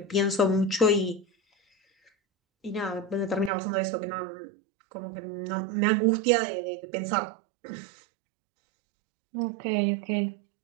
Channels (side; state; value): left; drops out; at 3.5 s